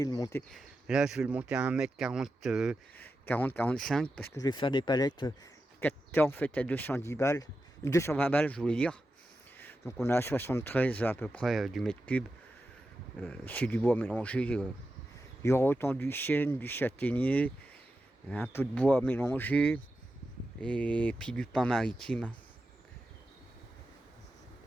Là, je vais le monter à 1m40, 40-45 parce que je vais faire des palettes 4 en fait à 210 balles. 220 balles, je voulais dire. Donc on a à 73 à peu près du mètre cube. C'est du bois mélangé. Il y aura autant du chêne, du châtaignier, un peu de bois mélangé et puis du pin maritime.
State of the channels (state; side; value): normal; both; correlation 0.90